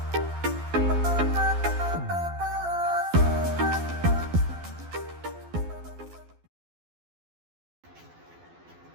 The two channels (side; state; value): left; late; 12 ms